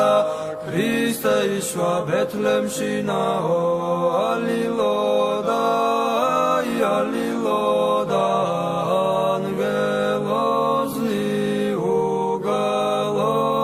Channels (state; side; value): identical; both; correlation 1.00